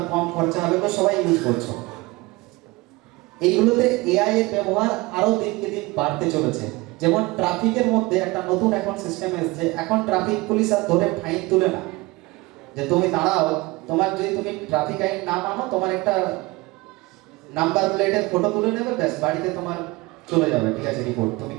কম খরচা হবে, তো সবাই ইউজ করছো। এইগুলোতে এআই এর ব্যবহার আরো দিনকে দিন বাড়তে চলেছে। যেমন ট্রাফিকের মধ্যে একটা নতুন এখন সিস্টেম এসেছে, এখন ট্রাফিক পুলিশ আর ধরে ফাইন তুলে না, যে তুমি দাঁড়াও, তোমার যদি তুমি ট্রাফিক আইন না মানো, তোমার একটা নাম্বার প্লেটের ফটো তুলে নেবে, ব্যাস বাড়িতে তোমার চলে যাবে, ঠিক আছে, রিপোর্ট তুমি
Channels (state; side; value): quieter; left; 22.9 dB